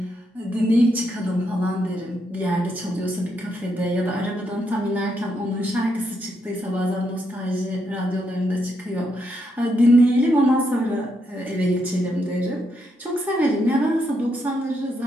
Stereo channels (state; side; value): normal; both; correlation 0.79